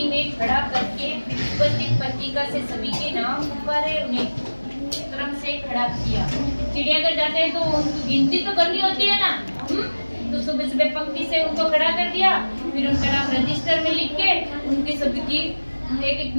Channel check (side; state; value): both; inverted; correlation -1.00